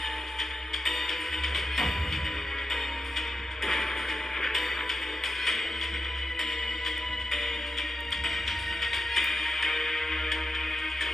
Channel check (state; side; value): normal; both; correlation 0.88